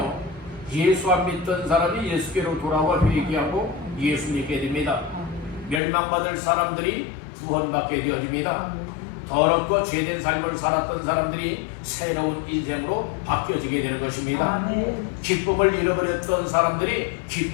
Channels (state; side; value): drops out; right; at 5.8 s